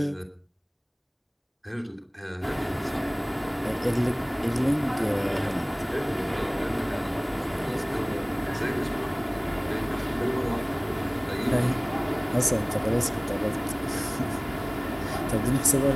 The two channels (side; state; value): both; identical; correlation 1.00